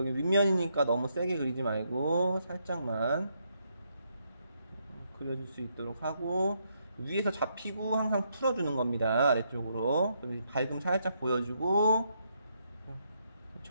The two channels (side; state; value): both; inverted; correlation -0.77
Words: 윗면이니까 너무 세게 그리지 말고 살짝만 그려줄 수 있도록 하고, 위에서 잡히고 항상 풀어주는 겁니다. 아래쪽으로. 밝음 살짝 보여주고,